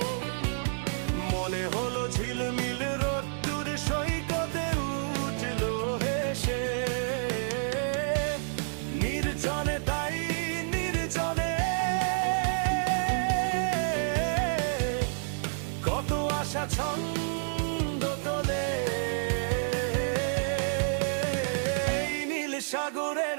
মনে হলো ঝিলমিল রোদ্দুর সৈকতে উঠলো হেসে। নির্জনে তাই নির্জনে কত আশা ছন্দ তোলে, এই নীল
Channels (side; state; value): left; silent; digital silence